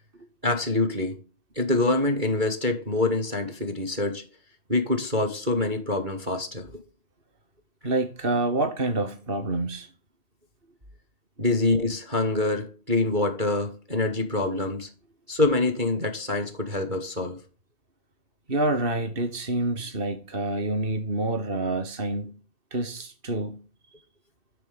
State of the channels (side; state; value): left; late; 2.3 ms